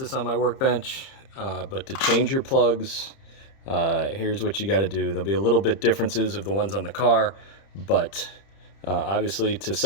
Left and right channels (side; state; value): right; late; 30 ms